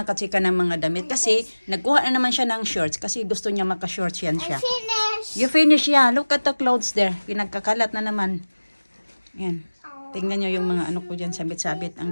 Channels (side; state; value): both; inverted; correlation -1.00